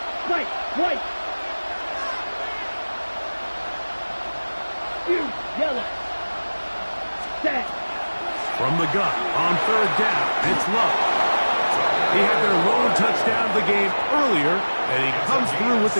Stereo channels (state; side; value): inverted; both; correlation -1.00